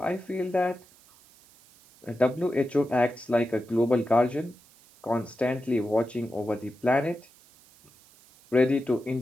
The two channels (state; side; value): noise; right; hiss, 28 dB below the sound